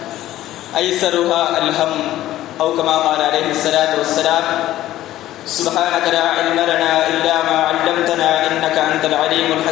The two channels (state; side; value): quieter; right; 14.2 dB